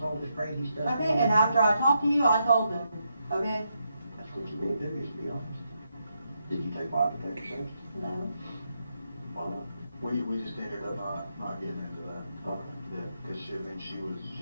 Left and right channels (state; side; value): inverted; both; correlation -0.81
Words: all this crazy stuff. Okay, and after I talked to you, I told him. Okay? That's what you need to do, is to be honest. Did you take lie detector tests? No. Why not? We just ended up not getting into that. Okay. Yeah, because